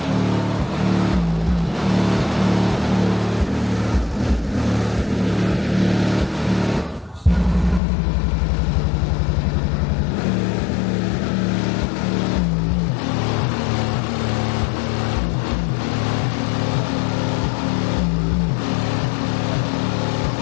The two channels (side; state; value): right; drops out; at 7.8 s